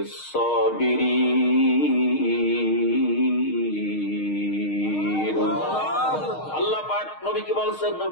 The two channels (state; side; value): late; right; 6.5 ms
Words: আল্লাহ পাক নবীকে বলছেন,